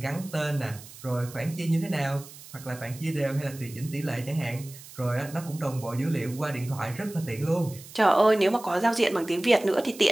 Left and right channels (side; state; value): right; noise; hiss, 17 dB below the sound